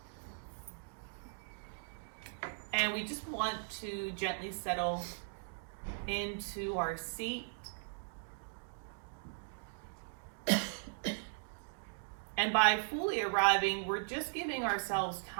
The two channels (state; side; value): silent; left; digital silence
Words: And we just want to gently settle into our seat. And by fully arriving, we're just giving ourselves